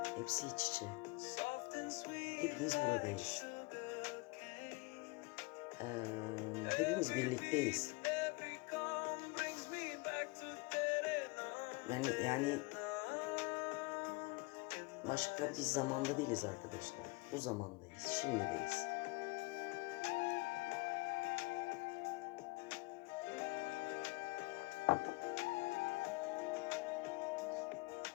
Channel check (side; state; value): right; quieter; 25.3 dB